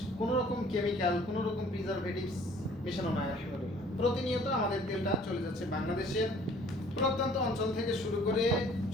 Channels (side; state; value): both; normal; correlation 0.55